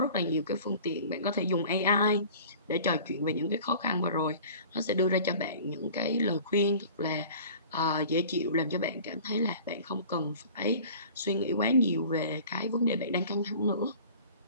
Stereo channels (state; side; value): inverted; both; correlation -0.44